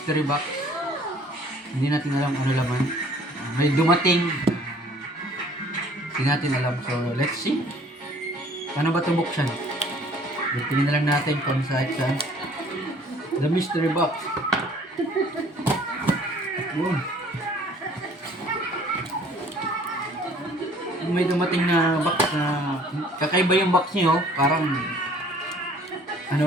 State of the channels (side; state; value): both; normal; correlation 0.55